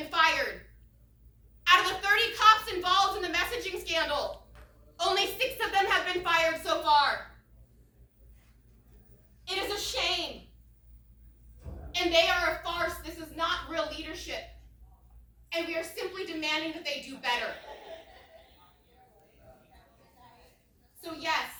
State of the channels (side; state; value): both; identical; correlation 1.00